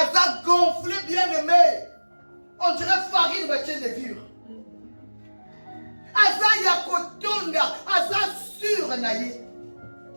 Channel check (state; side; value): inverted; both; correlation -1.00